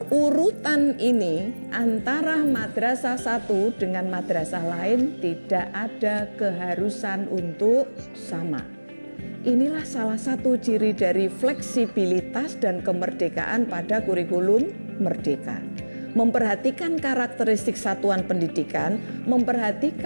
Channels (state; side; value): inverted; both; correlation -1.00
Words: Urutan ini antara madrasah satu dengan madrasah lain tidak ada keharusan untuk sama. Inilah salah satu ciri dari fleksibilitas dan kemerdekaan pada kurikulum merdeka. Memperhatikan karakteristik satuan pendidikan,